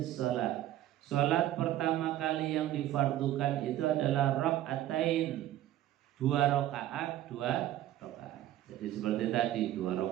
shalah. Salat pertama kali yang difardukan itu adalah rakaatain, 2 rakaat. rakaat. Jadi seperti tadi 2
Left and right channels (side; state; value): left; quieter; 13.3 dB